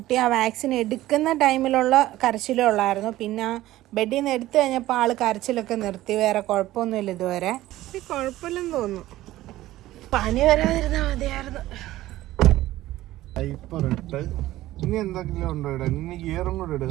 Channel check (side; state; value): left; quieter; 15.7 dB